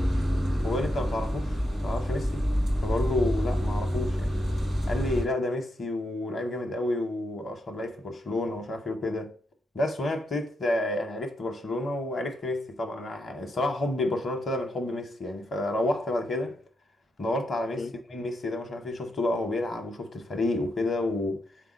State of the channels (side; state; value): both; normal; correlation 0.82